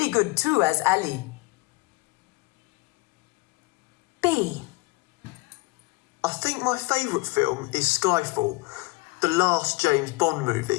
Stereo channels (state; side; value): quieter; right; 23.3 dB